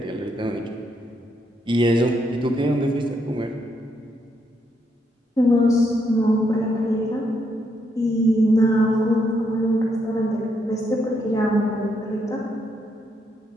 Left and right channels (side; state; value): both; normal; correlation 0.77